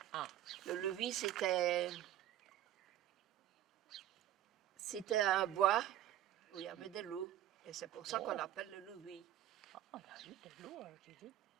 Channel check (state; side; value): quieter; left; 12.1 dB